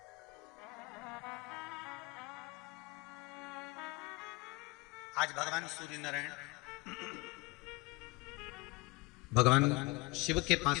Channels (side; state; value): right; quieter; 24.2 dB